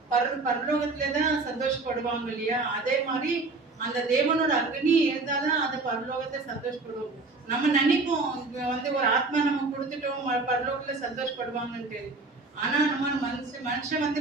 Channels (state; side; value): quieter; left; 3.6 dB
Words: பரலோகத்துலதான் சந்தோஷப்படுவாங்க இல்லையா? அதே மாதிரி அந்த தேவனோட அக்னி இருந்தாதான் அந்த பரலோகத்தை சந்தோஷப்படுவோம். நம்ம நினைப்போம் வந்து ஒரு ஆத்மா நம்ம கொடுத்துட்டோம் பரலோகத்துல சந்தோஷப்படுவாங்கன்ட்டு. ஆனா நம்ம மனுஷன் வந்து